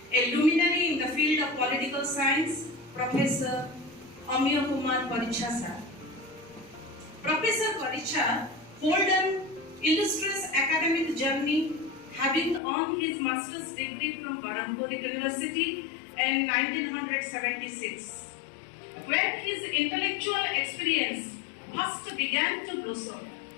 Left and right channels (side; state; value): right; drops out; at 12.6 s